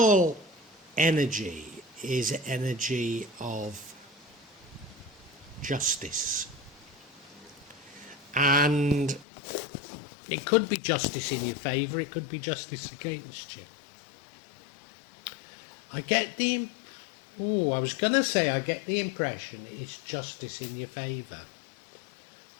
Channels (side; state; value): right; drops out; at 9.2 s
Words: energy is energy of justice. And it could be justice in your favour, it could be justice against you. I get the impression it's justice in your favour.